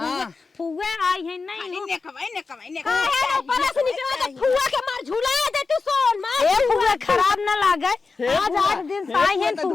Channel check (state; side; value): quieter; right; 4.4 dB